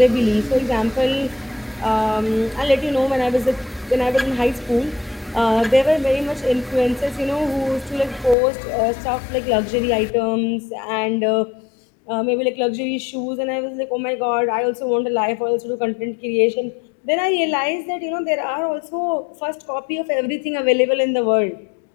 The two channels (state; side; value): drops out; right; at 8.3 s